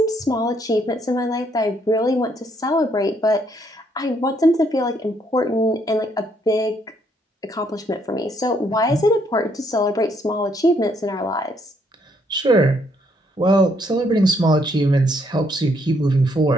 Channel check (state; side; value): normal; both; correlation 0.70